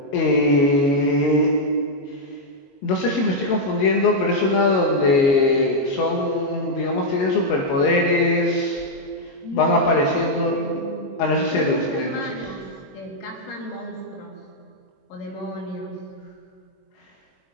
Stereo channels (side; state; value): right; late; 21 ms